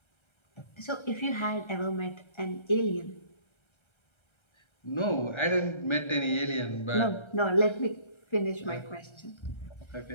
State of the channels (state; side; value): late; right; 1.3 ms